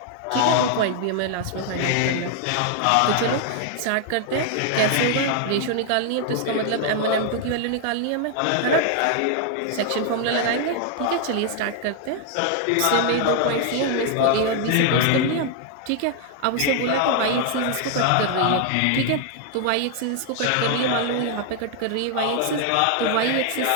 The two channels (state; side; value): different; both; correlation 0.00